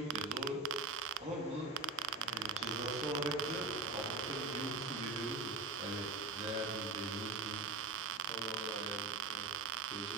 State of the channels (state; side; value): quieter; left; 3.8 dB